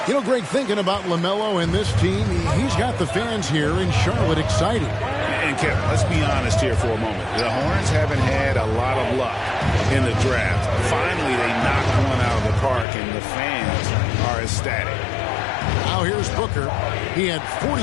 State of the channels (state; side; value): drops out; right; at 12.9 s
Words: You know, Greg, thinking about LaMelo and this team, he's got the fans here in Charlotte excited. And Kevin, let's be honest here for a moment. The Hornets haven't had a lot of luck in the draft. Finally, they knocked one out of the park, and the fans are ecstatic. Now here's Booker. He had